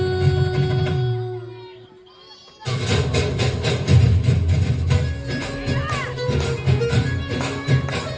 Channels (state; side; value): identical; both; correlation 1.00